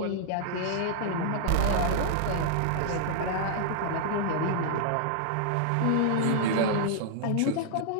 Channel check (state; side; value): different; both; correlation -0.01